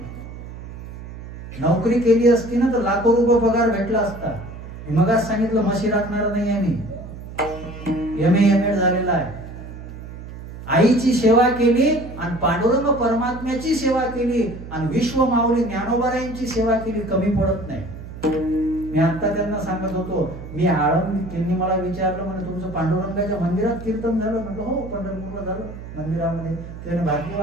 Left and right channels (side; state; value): right; noise; hum, 12 dB below the sound